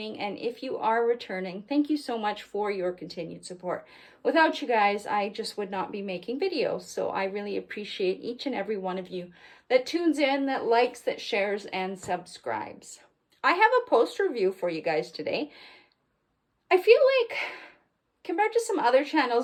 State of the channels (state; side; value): identical; both; correlation 1.00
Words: And if you are returning, thank you so much for your continued support. Without you guys, I just would not be making videos. So I really appreciate each and every one of you that tunes in, that likes, that shares, and subscribes. I have a post review for you guys today. I feel like compared to some other